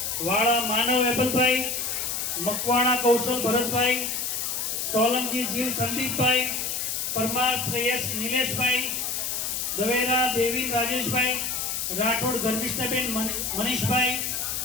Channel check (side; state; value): left; noise; hiss, 2 dB below the sound